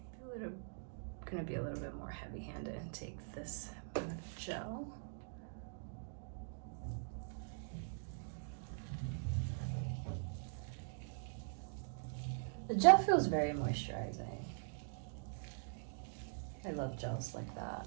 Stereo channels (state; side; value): silent; left; digital silence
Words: Gonna be a little bit more heavy-handed and take this amount of gel. The gel feels very moisturizing. I love gels like that.